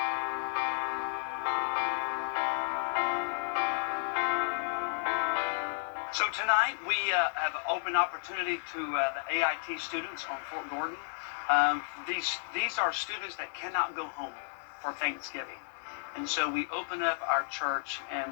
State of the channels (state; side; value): silent; right; digital silence